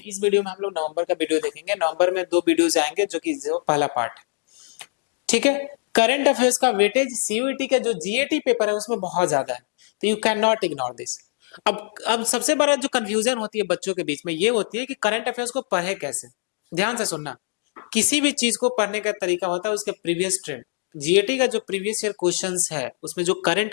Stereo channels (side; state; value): right; silent; 63 dB below the other